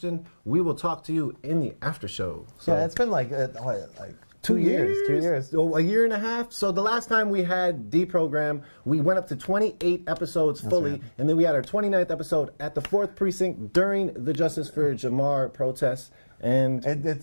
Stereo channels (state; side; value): inverted; both; correlation -1.00